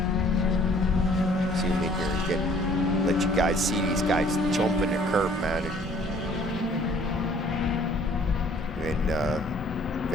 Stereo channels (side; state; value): both; normal; correlation 0.56